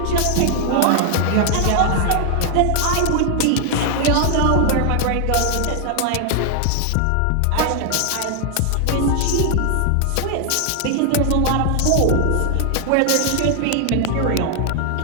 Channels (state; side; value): different; both; correlation 0.00